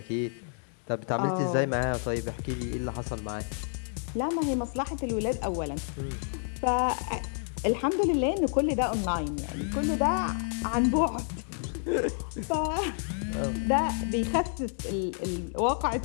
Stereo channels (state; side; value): silent; right; 58 dB below the other